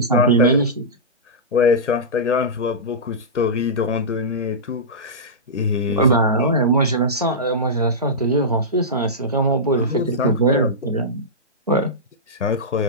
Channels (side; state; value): both; normal; correlation -0.14